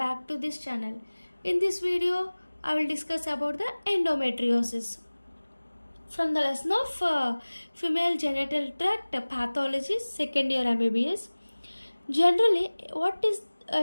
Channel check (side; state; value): both; inverted; correlation -1.00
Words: to this channel. In this video, I will discuss about the endometriosis. From the lesson of female genital tract pathology, second year mbbs. Generally, what is